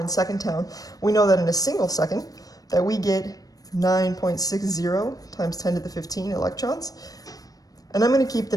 in second town. We know that in a single second that we get 9.60 times 10 to the 15 electrons. And I'm going to keep the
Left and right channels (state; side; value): late; right; 0.18 ms